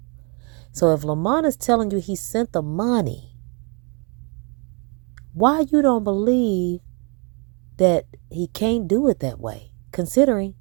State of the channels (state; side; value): quieter; left; 34.2 dB